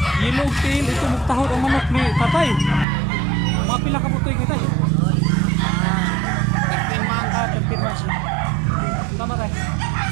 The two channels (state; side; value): drops out; left; at 2.9 s